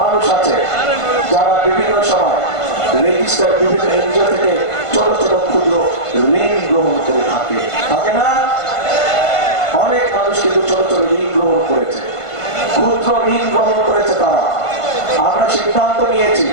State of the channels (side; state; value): right; late; 1.5 ms